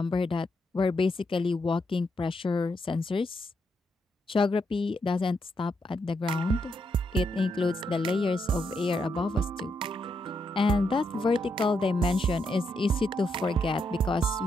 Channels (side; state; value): both; normal; correlation 0.80